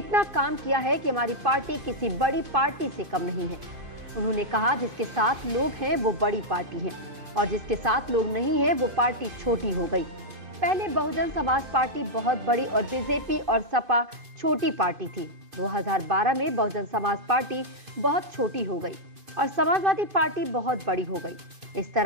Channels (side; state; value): left; late; 2.5 ms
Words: काम किया है कि हमारी पार्टी किसी बड़ी पार्टी से कम नहीं है। उन्होंने कहा, जिसके साथ लोग हैं वो बड़ी पार्टी है और जिसके साथ लोग नहीं है वो पार्टी छोटी हो गई। पहले बहुजन समाज पार्टी बहुत बड़ी और बीजेपी और सपा छोटी पार्टी थी। 2012 में बहुजन समाज पार्टी बहुत छोटी हो गई और समाजवादी पार्टी बहुत बड़ी हो गई। इस